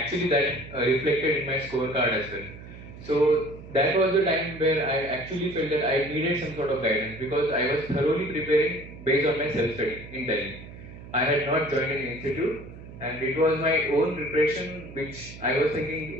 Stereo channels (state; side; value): noise; right; hum, 15 dB below the sound